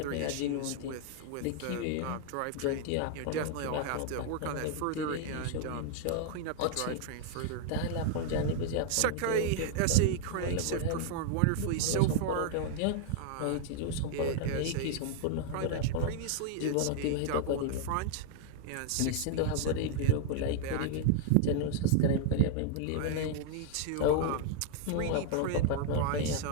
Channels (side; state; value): both; different; correlation 0.00